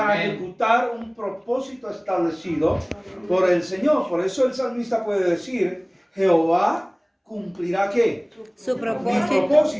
Amén. ejecutar un propósito establecido por el Señor. Por eso el salmista puede decir: Jehová cumplirá ¿qué? Su Mi propósito.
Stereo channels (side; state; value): both; identical; correlation 1.00